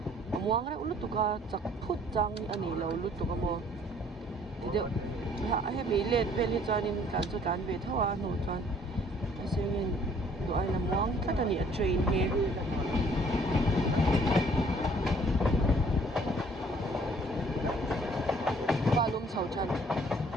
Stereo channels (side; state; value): both; normal; correlation 0.58